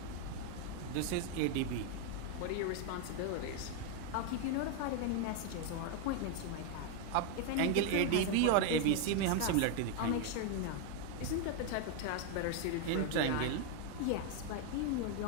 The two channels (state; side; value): different; both; correlation 0.01